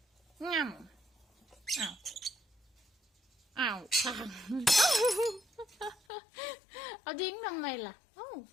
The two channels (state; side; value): drops out; right; at 6.0 s